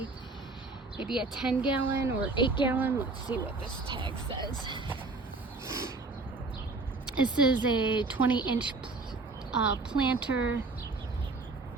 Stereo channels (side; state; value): left; quieter; 3.6 dB